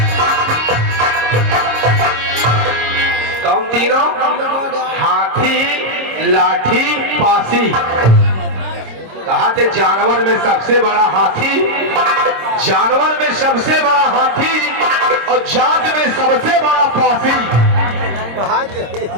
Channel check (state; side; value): late; left; 26 ms